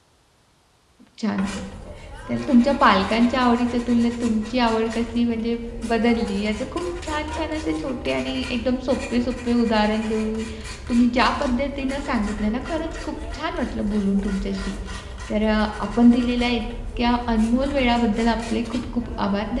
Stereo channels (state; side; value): identical; both; correlation 1.00